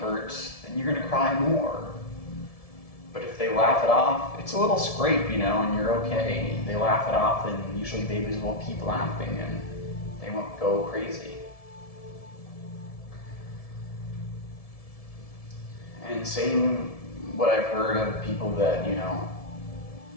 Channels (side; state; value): right; late; 1.7 ms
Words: then you're going to cry more. But if they laugh it off, it's a little scrape, and you're okay. They laugh it off, and usually babies will keep laughing and they won't go crazy. And same what I've heard of people that,